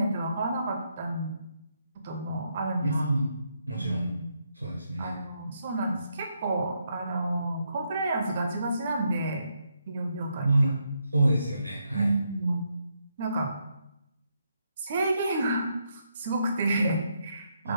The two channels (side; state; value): both; inverted; correlation -0.78